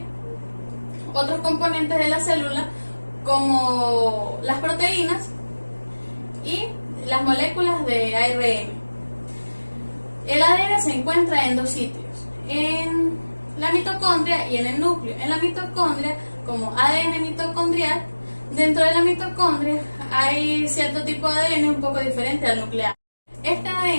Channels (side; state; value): both; inverted; correlation -1.00